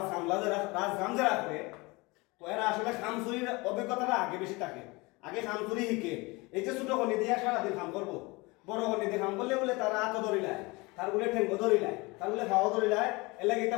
যারা করে তো এরা আসলে খামচুরির অভিজ্ঞতাটা আগে বেশি থাকে আগে খামচুরি শিখে এই যে ছোট কন্যা দিয়ে সারাদিন কাম করবো বড় কন্যা দিয়ে কাম করলে বলে তারা হাতও ধরিলায় তার বলে ঠেঙ্গো ধরিলায় তার বলে খাওয়া ধরিলায় এলাকা এটা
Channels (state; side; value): quieter; right; 24.7 dB